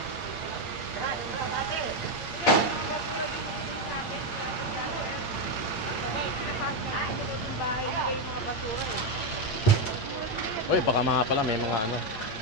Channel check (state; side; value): late; right; 8.8 ms